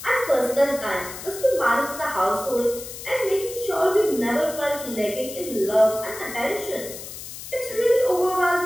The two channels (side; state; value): left; noise; hiss, 11 dB below the sound